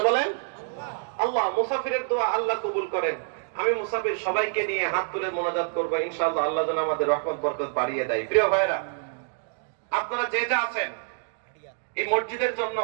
বলেন আল্লাহ। মুসাফিরের দোয়া আল্লাহ কবুল করেন। আমি মুসাফির সবাইকে নিয়ে হাত তুলে মোনাজাত করবো, ইনশাআল্লাহ আল্লাহ যেন আমাদের রহমত বরকত বাড়িয়ে দেয়। প্রিয় ভাইরা, আপনারা যে যা আছেন এই মসজিদের জন্য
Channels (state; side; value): silent; left; digital silence